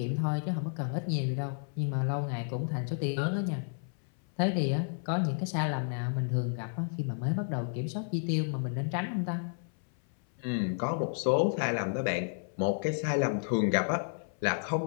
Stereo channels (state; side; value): silent; right; 57 dB below the other